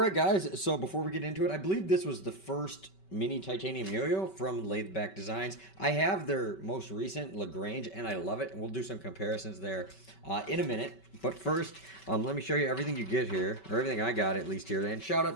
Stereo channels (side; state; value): right; late; 5.2 ms